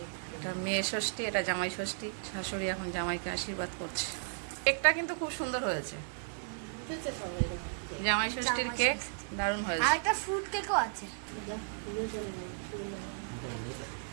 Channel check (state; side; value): silent; left; digital silence